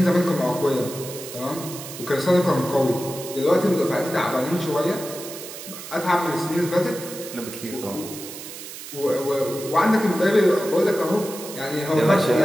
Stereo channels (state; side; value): noise; right; hiss, 12 dB below the sound